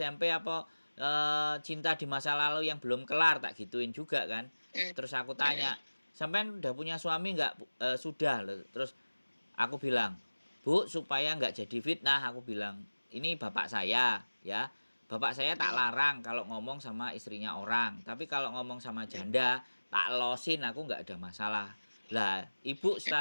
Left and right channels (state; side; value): inverted; both; correlation -1.00